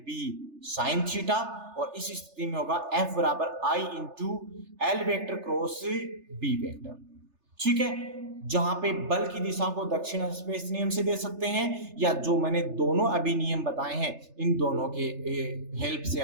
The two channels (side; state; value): left; late; 3.3 ms